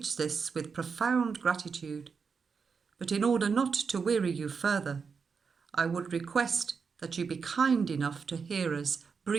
this with profound gratitude. But in order not to weary you further, I would request that you be kind enough to hear us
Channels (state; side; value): quieter; left; 5.6 dB